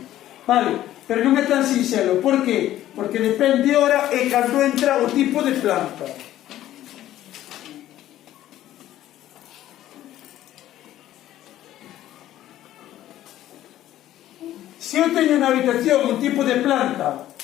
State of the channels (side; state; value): right; quieter; 13.3 dB